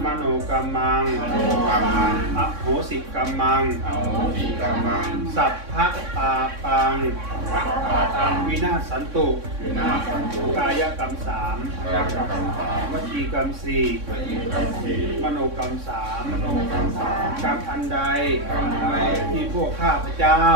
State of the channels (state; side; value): late; left; 3.6 ms